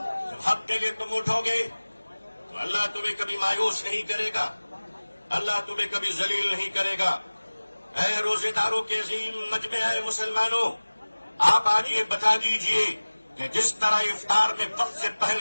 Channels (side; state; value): both; inverted; correlation -1.00